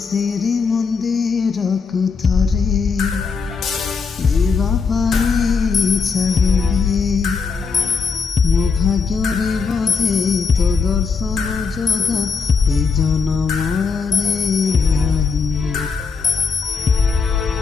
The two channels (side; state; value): right; quieter; 5.3 dB